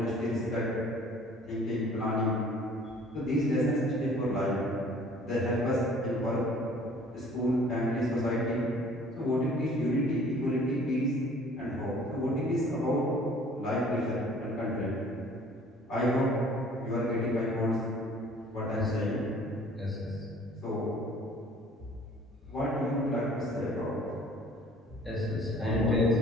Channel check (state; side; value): normal; both; correlation 0.53